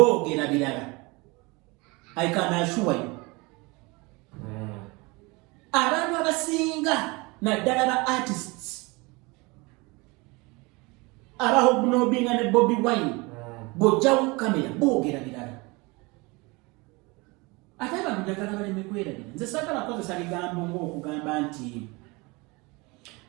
birala. I can assure you. Abantu abasinga naddala ba artists abahobnobinga ne Bobi Wine bojjawo kamera boogera birala. Ate abantu njagala baleme kwerabira. Nze saagala kozesa bigambo ng'okugamba nti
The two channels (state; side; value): quieter; left; 25.7 dB